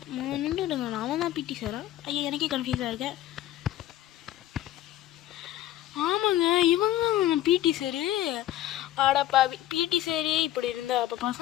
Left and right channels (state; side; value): quieter; right; 13.4 dB